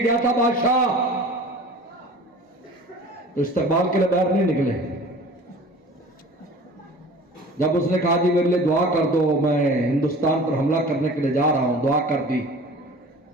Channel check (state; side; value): normal; both; correlation 0.43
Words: گیا تھا بادشاہ، تو استقبال کے لیے باہر نہیں نکلے، جب اس نے کہا جی میرے لیے دعا کر دو، میں ہندوستان پر حملہ کرنے کے لیے جا رہا ہوں، دعا کر دی،